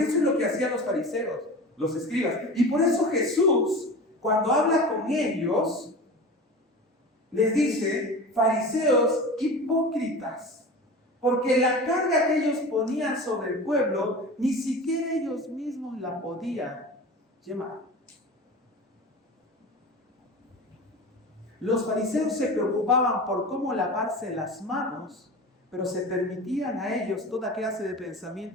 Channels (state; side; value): normal; both; correlation 0.33